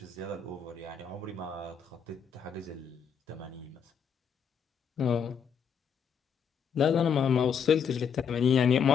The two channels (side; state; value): right; quieter; 6.9 dB